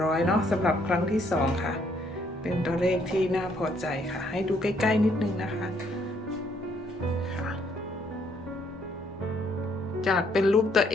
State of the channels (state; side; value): normal; both; correlation 0.68